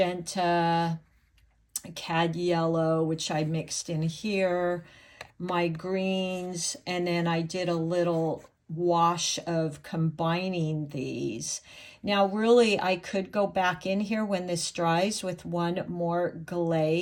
cad yellow, which I mixed in here, my greens, and then I did a little wash of combining these. Now, really, I could go back in here when this dries with one more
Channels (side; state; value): both; identical; correlation 1.00